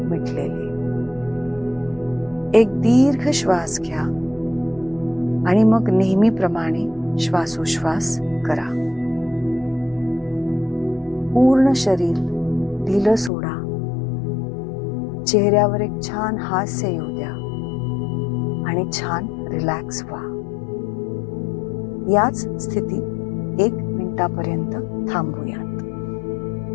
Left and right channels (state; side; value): drops out; right; at 13.3 s